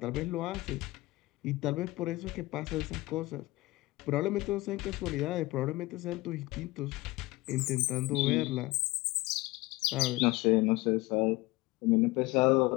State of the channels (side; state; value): right; quieter; 20.8 dB